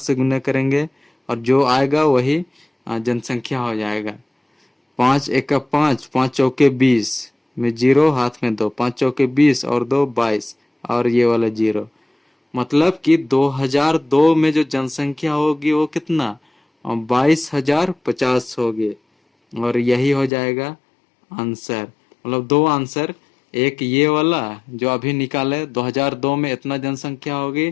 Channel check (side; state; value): right; drops out; at 20.3 s